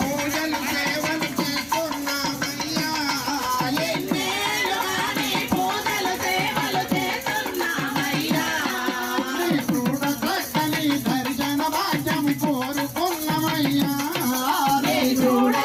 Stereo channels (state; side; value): identical; both; correlation 1.00